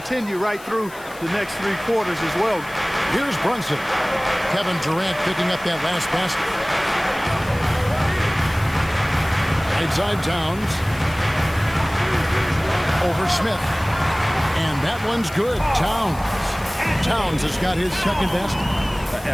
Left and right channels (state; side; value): noise; left; hiss, 20 dB below the sound